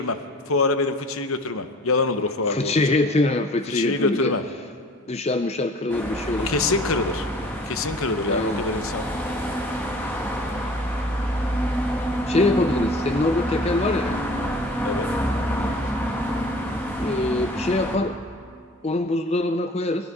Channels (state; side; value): normal; both; correlation 0.46